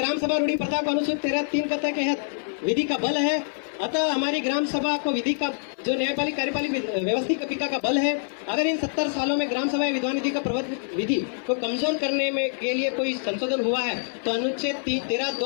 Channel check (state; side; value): silent; right; 57 dB below the other